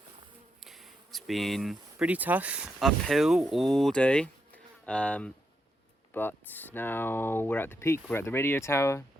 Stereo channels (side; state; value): both; normal; correlation 0.82